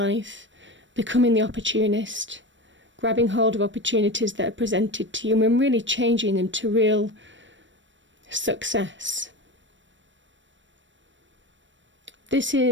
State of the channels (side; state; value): left; late; 0.54 ms